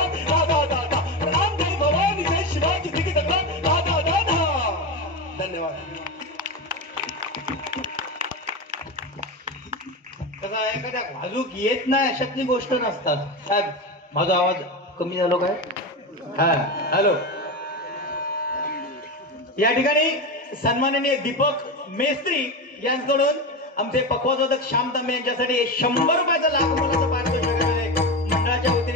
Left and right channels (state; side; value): normal; both; correlation 0.19